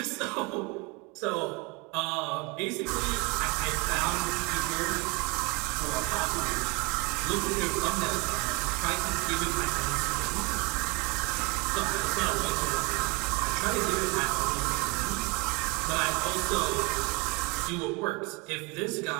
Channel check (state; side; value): quieter; left; 28.6 dB